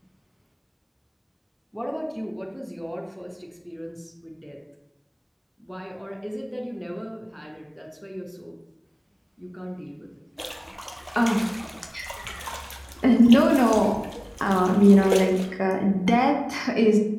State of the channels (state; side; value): identical; both; correlation 1.00